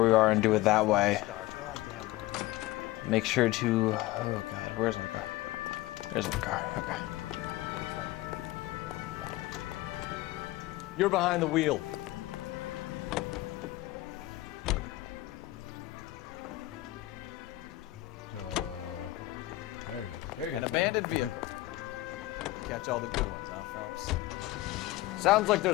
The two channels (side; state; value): right; quieter; 17.6 dB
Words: we are and do it that way. Make sure to... Oh god, where's my car? There's my car, okay. You're behind the wheel. No. There he comes. Here he comes. Abandoned vehicle. Catch all the good ones, huh, Phelps? Sounds like